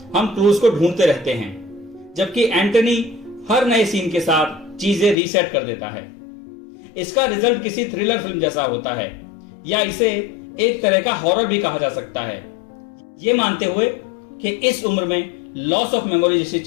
हम क्लूज को ढूंढते रहते हैं, जबकि एंटनी हर नए सीन के साथ चीजें रीसेट कर देता है। इसका रिजल्ट किसी थ्रिलर फिल्म जैसा होता है या इसे एक तरह का हॉरर भी कहा जा सकता है, ये मानते हुए कि इस उम्र में लॉस ऑफ मेमोरी जैसी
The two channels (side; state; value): right; drops out; at 5.2 s